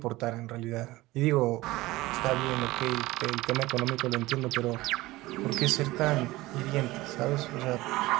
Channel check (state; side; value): quieter; left; 19.0 dB